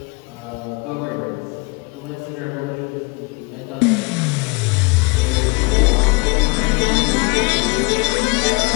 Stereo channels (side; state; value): right; quieter; 27.0 dB